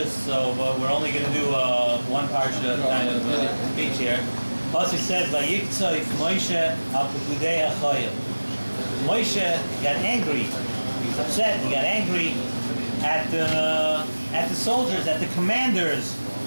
so we're only going to do one parsha kind of speech here. Pasuk says, "Vayiktzoi Moshe al pekudei hachayil." Moshe got angry. He was upset. He got angry at the soldiers, at the commanders.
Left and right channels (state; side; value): inverted; both; correlation -1.00